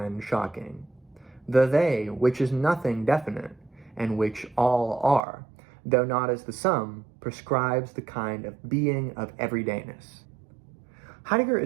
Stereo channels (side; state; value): left; drops out; at 5.2 s